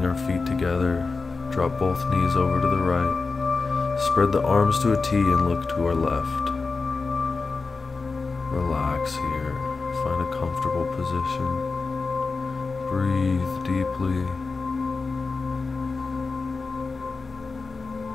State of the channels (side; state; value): right; quieter; 4.2 dB